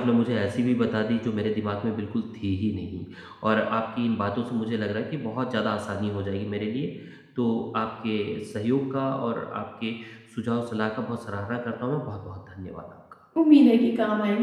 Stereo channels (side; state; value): both; identical; correlation 1.00